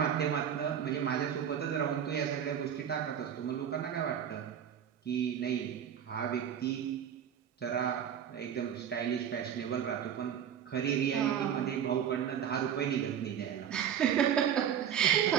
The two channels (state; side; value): quieter; left; 8.9 dB